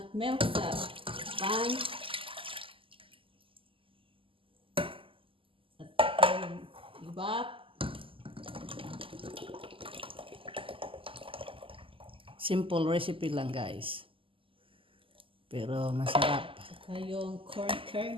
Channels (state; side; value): late; left; 0.25 ms